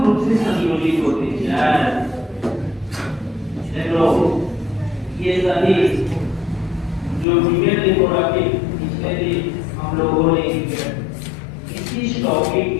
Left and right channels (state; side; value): drops out; right; at 7.2 s